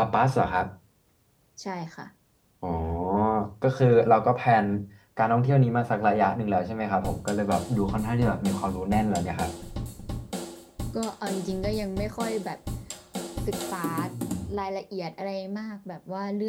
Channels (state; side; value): identical; both; correlation 1.00